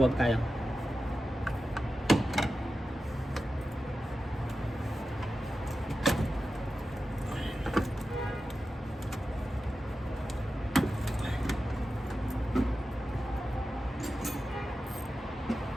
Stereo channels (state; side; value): normal; both; correlation 0.92